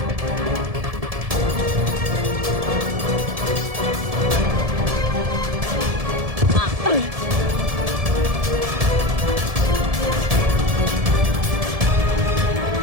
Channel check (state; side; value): late; left; 1.7 ms